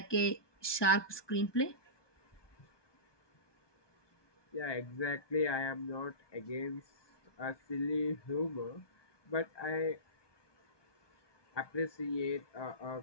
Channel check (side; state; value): right; late; 1.2 ms